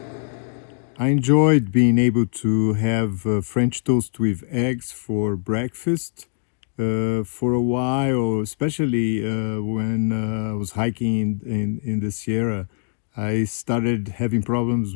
I enjoyed being able to have French toast with eggs for breakfast for a while, especially when I was hiking in the Sierra. I started having problems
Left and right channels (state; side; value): silent; right; digital silence